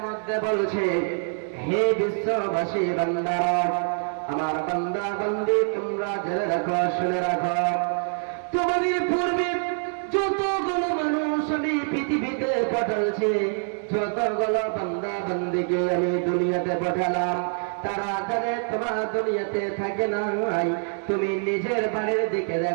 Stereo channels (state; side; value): silent; left; 59 dB below the other